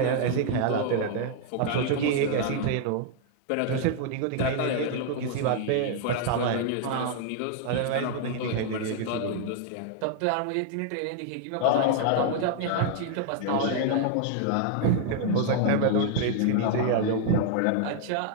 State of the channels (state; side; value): different; both; correlation 0.00